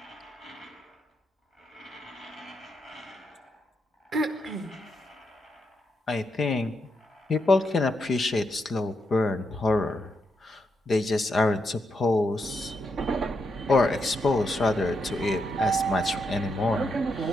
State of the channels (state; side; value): normal; both; correlation 0.81